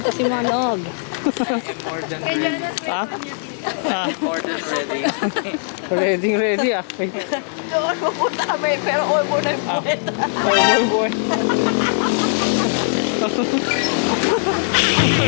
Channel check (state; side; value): silent; right; digital silence